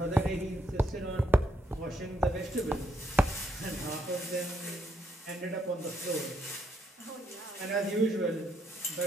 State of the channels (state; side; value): normal; both; correlation 0.75